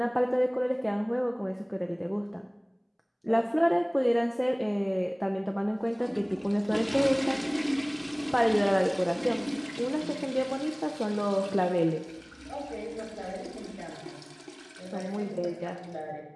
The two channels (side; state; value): both; identical; correlation 1.00